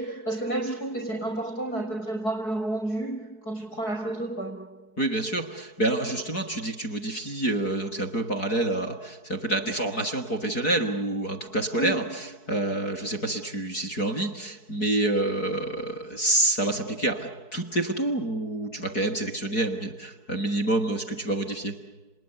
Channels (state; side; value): late; right; 4.6 ms